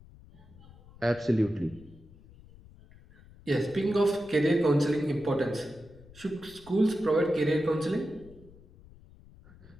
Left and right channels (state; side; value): noise; left; rumble, 23 dB below the sound